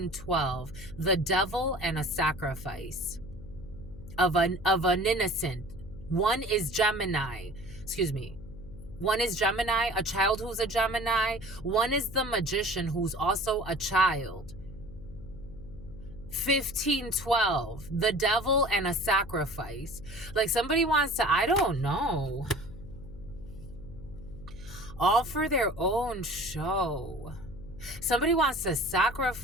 The devil and a sacrifice of an innocent. One is Gemini. Excuse me. One is Gemini, a child who's a Gemini. One is the magician who's also a child. 1512. The devil and a sacrifice. Like somebody wants to, I don't know. All for their own show. Somebody wants to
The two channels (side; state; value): left; noise; hum, 15 dB below the sound